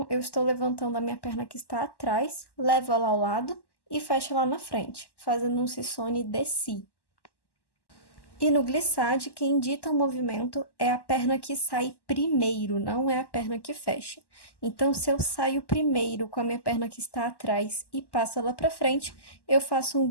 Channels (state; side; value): late; right; 1.1 ms